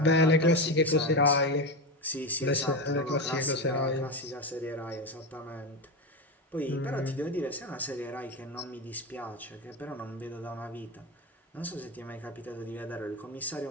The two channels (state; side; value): normal; both; correlation 0.17